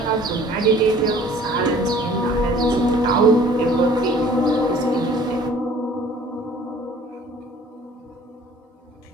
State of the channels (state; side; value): normal; both; correlation 0.52